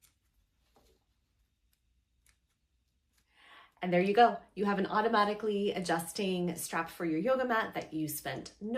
And there you go. You have an automatically adjusting strap for your yoga mat that you spent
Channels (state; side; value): identical; both; correlation 1.00